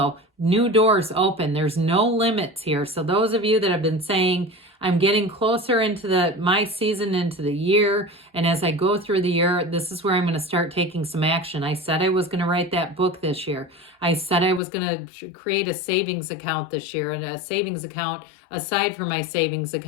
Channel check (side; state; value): right; drops out; at 14.6 s